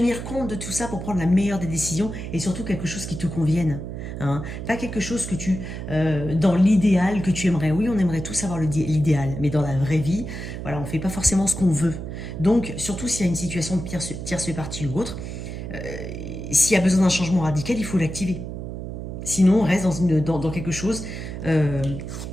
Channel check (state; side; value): noise; right; hum, 7 dB below the sound